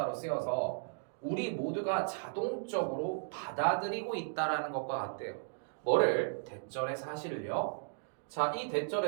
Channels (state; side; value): silent; left; digital silence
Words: 쓰여서 우리 모두가 자동적으로 받아들이고 있다라는 것과 같대요. 뭐를? 대절의 사실을요. 자, 이